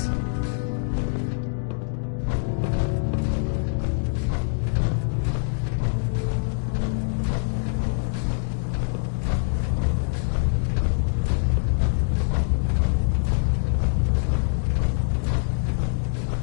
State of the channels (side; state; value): right; silent; digital silence